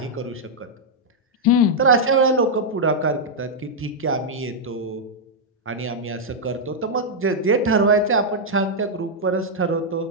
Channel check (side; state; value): both; normal; correlation -0.04